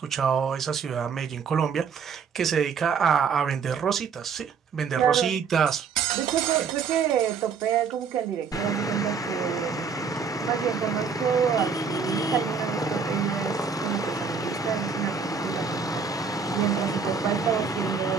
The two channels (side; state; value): left; quieter; 5.9 dB